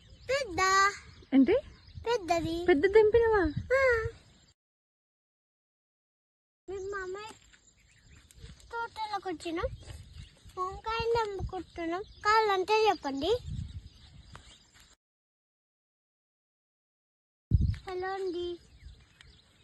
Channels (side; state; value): both; identical; correlation 1.00